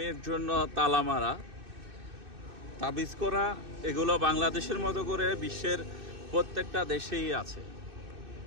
জন্য তালা মারা, তাবিজ করা, এগুলো বাংলাদেশের মতো করে বিশ্বের প্রত্যেকটা দেশেই আছে।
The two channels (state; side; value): late; left; 2.6 ms